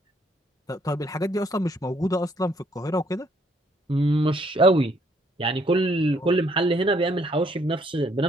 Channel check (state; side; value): normal; both; correlation 0.67